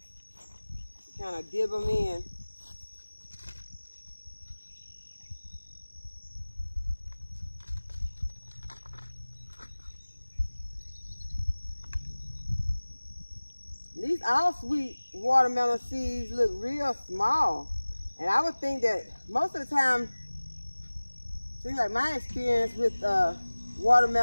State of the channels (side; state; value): both; inverted; correlation -1.00